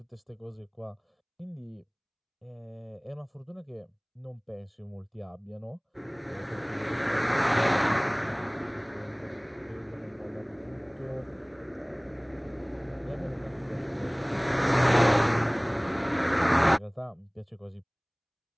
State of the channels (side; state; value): both; identical; correlation 1.00